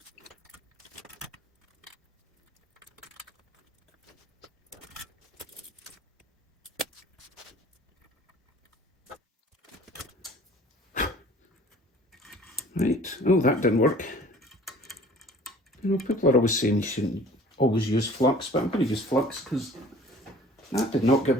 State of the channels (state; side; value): normal; both; correlation 0.49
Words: Right, oh that didn't work. You know, people are always saying you shouldn't always use flux, but I'm going to use flux because that did not give